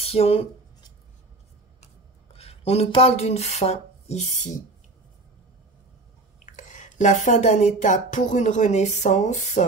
On nous parle d'une fin ici. La fin d'un état pour une renaissance,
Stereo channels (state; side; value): quieter; left; 3.1 dB